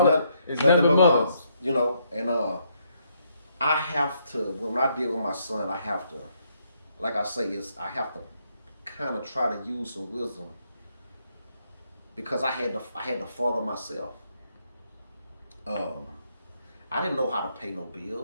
but moms. You know, and I have to, when I deal with my son, I have to, like I say, I have to kind of try to use some wisdom, because I had to father myself. I didn't know how to pay no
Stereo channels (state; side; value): inverted; both; correlation -0.74